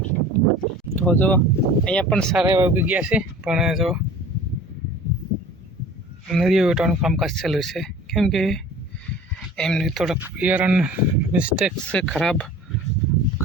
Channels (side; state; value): both; normal; correlation 0.43